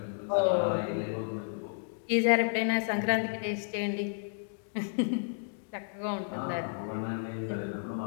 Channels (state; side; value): silent; right; digital silence